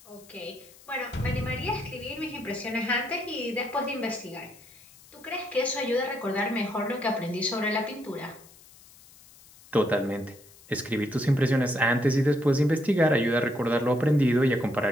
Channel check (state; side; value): noise; left; hiss, 24 dB below the sound